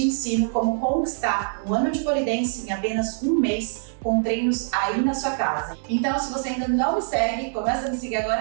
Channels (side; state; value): left; silent; digital silence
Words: ensino como conquistar um ano de pole dance em apenas um mês com treinos aí na sua casa. Então, se você ainda não me segue, começa a me seguir